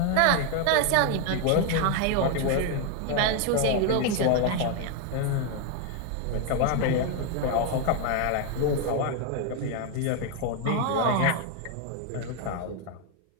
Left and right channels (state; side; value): different; both; correlation 0.01